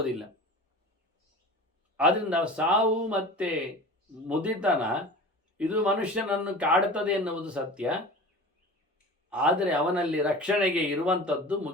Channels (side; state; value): both; normal; correlation 0.36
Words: ಆದ್ದರಿಂದ ಸಾವು ಮತ್ತೆ ಮುದಿತನ ಇದು ಮನುಷ್ಯನನ್ನು ಕಾಡುತ್ತದೆ ಎನ್ನುವುದು ಸತ್ಯ. ಆದರೆ ಅವನಲ್ಲಿ ರಕ್ಷಣೆಗೆ ಇರುವಂಥದ್ದು